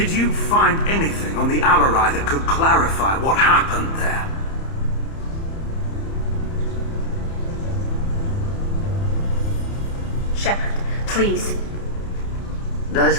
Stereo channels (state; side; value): late; right; 30 ms